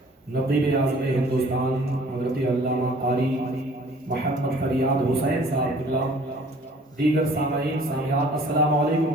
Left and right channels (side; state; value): both; normal; correlation 0.52